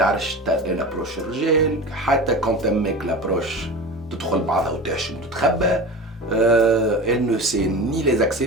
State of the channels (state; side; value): normal; both; correlation 0.31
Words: تابروش الرجال, حتى كون تمك لابروش تدخل بعضها وتحشم وتتخبى. elle ne sait ni les